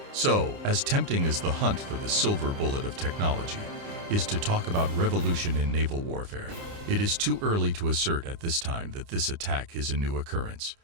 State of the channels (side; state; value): left; late; 29 ms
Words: So, as tempting as the hunt for the silver bullet of technology is to talk about revolution in naval warfare, it is too early to assert at this time that this attack is a new occurrence.